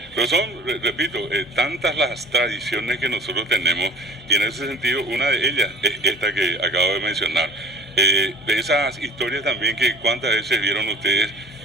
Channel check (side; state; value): both; normal; correlation 0.46